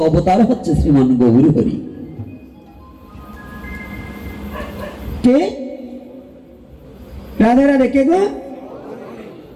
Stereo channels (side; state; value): both; identical; correlation 1.00